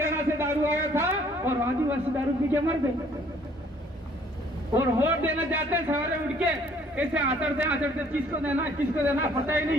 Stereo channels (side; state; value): both; normal; correlation 0.60